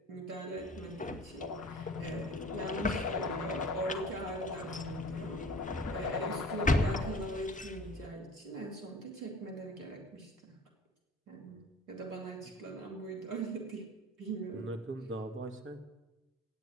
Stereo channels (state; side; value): normal; both; correlation 0.45